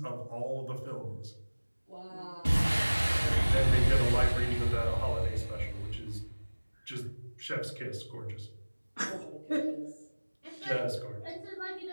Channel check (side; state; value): both; inverted; correlation -1.00